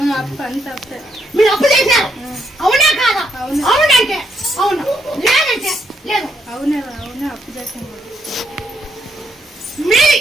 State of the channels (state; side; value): normal; both; correlation 0.76